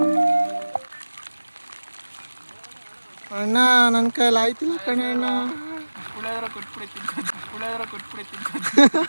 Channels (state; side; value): inverted; both; correlation -1.00